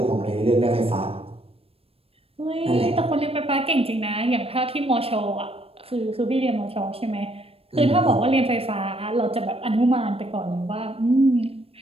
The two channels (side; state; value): left; late; 0.28 ms